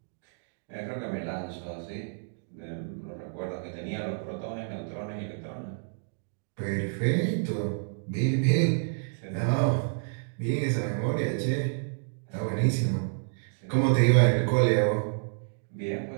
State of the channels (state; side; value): silent; left; digital silence